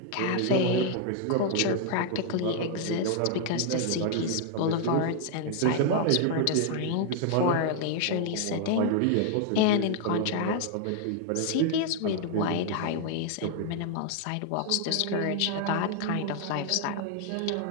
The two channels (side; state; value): both; different; correlation 0.00